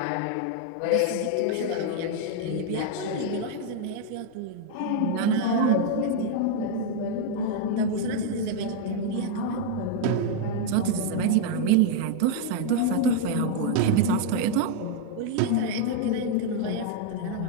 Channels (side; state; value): both; different; correlation 0.00